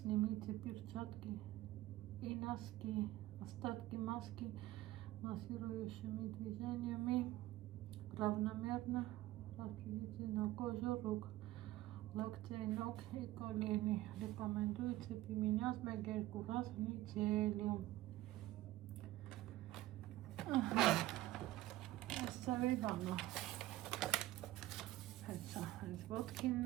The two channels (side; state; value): left; quieter; 16.1 dB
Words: перчатки и носки. Остатки маски массирующими движениями равномерно распределите на кожу рук. Локтей, ног и колени. Рекомендуется применять 1-2 раз в неделю. Оставим. Это